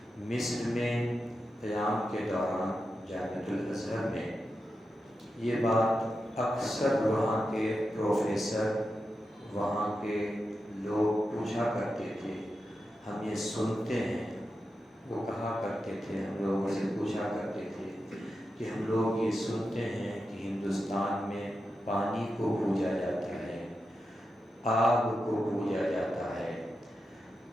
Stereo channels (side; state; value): both; normal; correlation 0.89